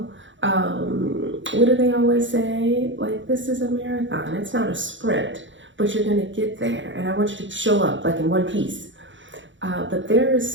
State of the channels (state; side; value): late; left; 0.55 ms